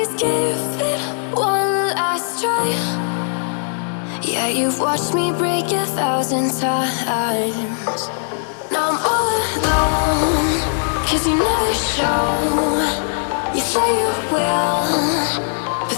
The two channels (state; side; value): silent; right; digital silence